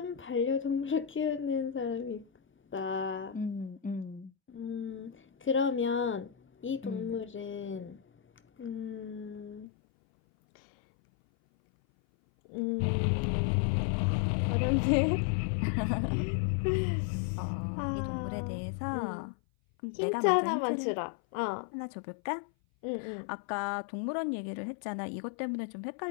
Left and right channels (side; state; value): right; drops out; at 9.7 s